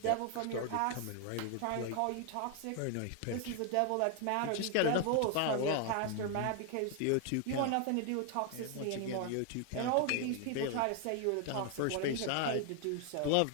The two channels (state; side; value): different; both; correlation 0.00